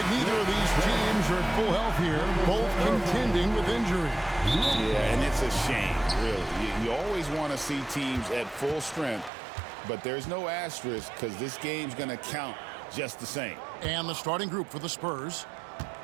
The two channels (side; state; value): left; drops out; at 9.3 s